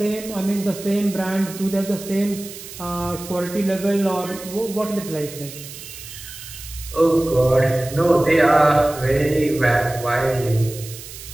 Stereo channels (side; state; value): right; noise; hiss, 14 dB below the sound